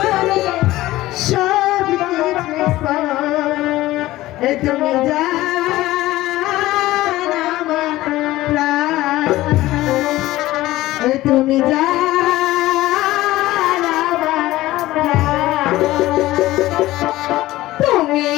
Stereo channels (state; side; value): quieter; right; 16.8 dB